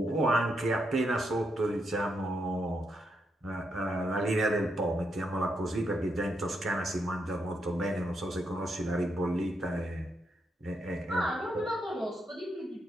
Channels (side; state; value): both; normal; correlation 0.80